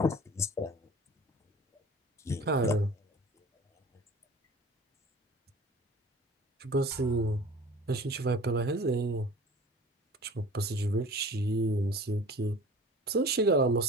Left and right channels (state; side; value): normal; both; correlation 0.43